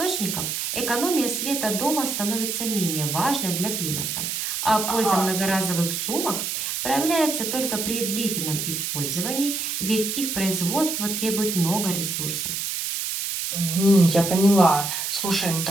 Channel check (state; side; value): noise; right; hiss, 2 dB below the sound